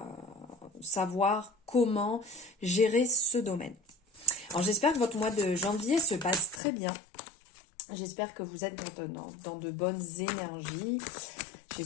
savoir comment gérer ce domaine. Alors j'espère que votre mois de janvier se passe très bien. J'espère que vous êtes dans de bonnes énergies.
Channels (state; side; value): drops out; right; at 6.6 s